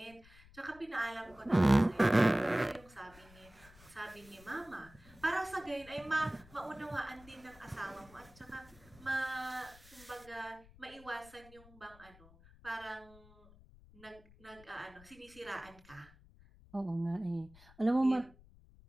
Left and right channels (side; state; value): left; noise; rumble, 23 dB below the sound